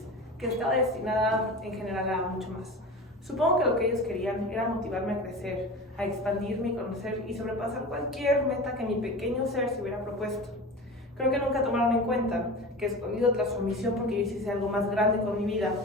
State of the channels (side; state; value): both; normal; correlation 0.32